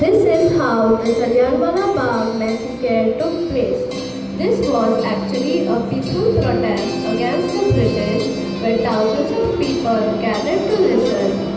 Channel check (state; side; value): identical; both; correlation 1.00